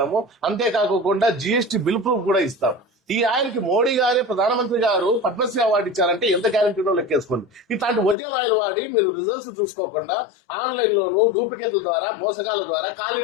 అంతేకాకుండా GST బిల్ ప్రూఫ్ కూడా ఇస్తాం. ఈ ఆయిల్ కి మోడీ గారే, ప్రధానమంత్రి గారు పద్మశ్రీ అవార్డు ఇచ్చారంటే ఎంత గ్యారంటీనో లెక్కేసుకోండి. ఇట్లాంటి ఒరిజినల్ ఆయిల్ వాడి మీరు రిజల్ట్స్ చూసుకోకుండా ఆన్లైన్ లోను డూప్లికేట్ల ద్వారా, మోసగాల ద్వారా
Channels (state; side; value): drops out; right; at 8.2 s